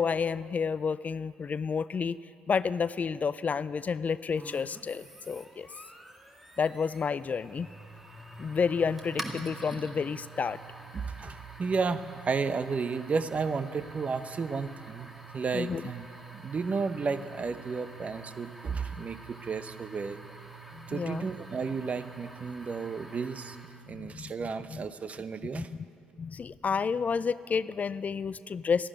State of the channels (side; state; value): both; normal; correlation 0.79